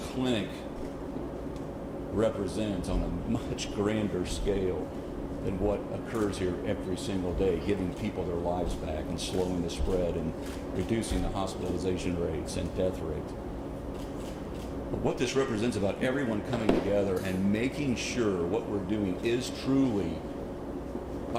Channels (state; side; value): identical; both; correlation 1.00